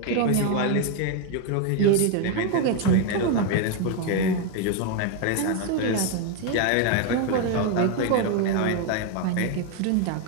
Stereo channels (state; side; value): different; both; correlation 0.01